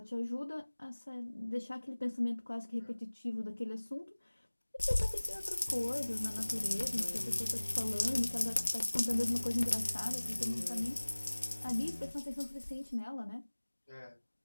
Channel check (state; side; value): inverted; both; correlation -1.00